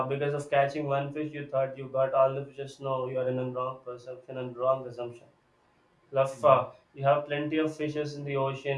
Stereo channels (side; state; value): both; identical; correlation 1.00